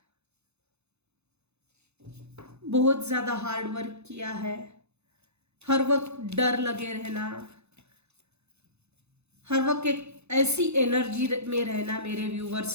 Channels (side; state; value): left; late; 0.81 ms